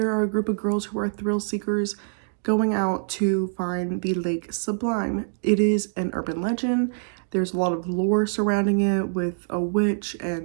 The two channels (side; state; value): left; silent; digital silence